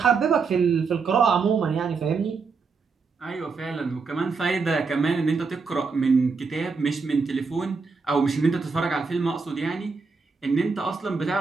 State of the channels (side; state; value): left; quieter; 4.8 dB